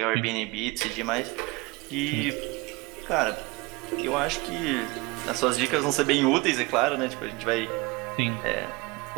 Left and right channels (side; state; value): left; quieter; 24.3 dB